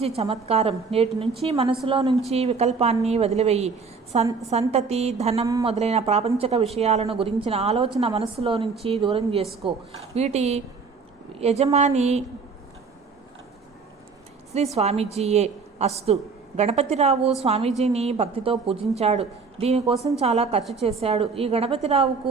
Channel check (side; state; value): left; quieter; 4.9 dB